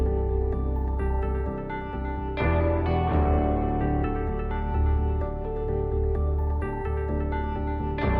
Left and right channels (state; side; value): identical; both; correlation 1.00